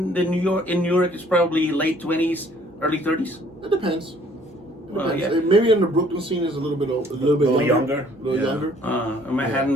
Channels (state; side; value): normal; both; correlation 0.59